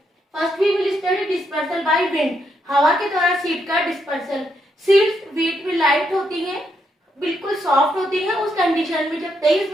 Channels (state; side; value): normal; both; correlation 0.78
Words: First we will study dispersal by wind. हवा के द्वारा seed का dispersal. Seeds wait में light होती हैं, बिल्कुल soft होती है। उस कंडीशन में जब तेज